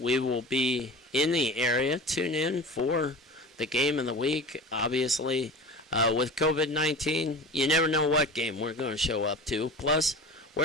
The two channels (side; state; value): both; normal; correlation 0.34